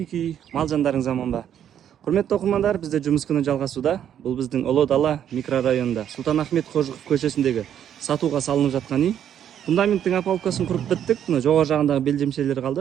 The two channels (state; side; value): quieter; left; 9.7 dB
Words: мал жандарыңыз аман ба? Құрметті оқырмандар, бізде жұмыс күні жалғасуда. Бұл біздің Ұлы Дала микрорайонында Сұлтан Ахмет Қожықов көшесіндегі сатуға салынып жатқан үй. Фундаменттің опалубкасын құрып біттік. Мына жоғары жағындағы белдемшелер